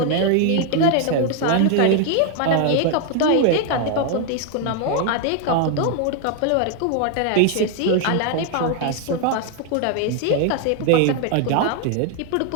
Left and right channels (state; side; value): different; both; correlation 0.00